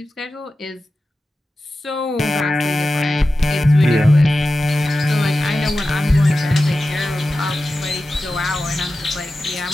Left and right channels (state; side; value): normal; both; correlation 0.94